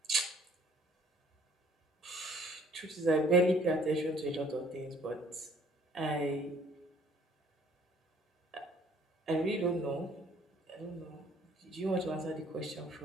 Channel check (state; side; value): normal; both; correlation 0.58